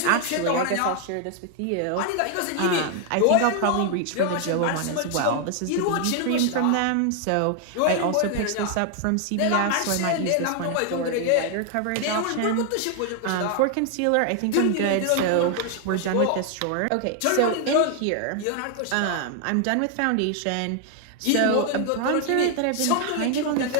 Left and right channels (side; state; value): both; different; correlation 0.00